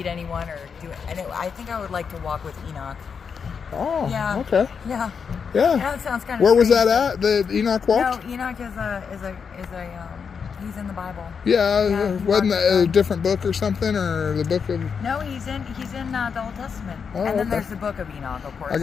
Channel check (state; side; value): quieter; right; 6.2 dB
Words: anyone or do it, and I think I would like to walk with Enoch. Oh, yeah. Okay. Yeah. Yeah. That sounds kind of. Where was that strange, at? The Enoch walk? No, Enoch is a he's in the Bible. Yeah. Wasn't that a different book or something, or the book of? No, he's in the Old Testament. Oh, and then okay. there's the book of Enoch, of course. I